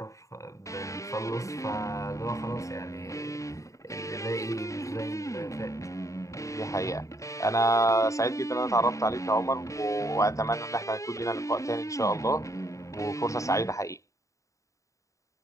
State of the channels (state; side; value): late; right; 0.16 ms